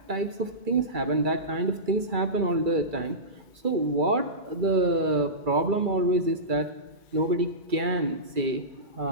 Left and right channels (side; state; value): left; late; 2.3 ms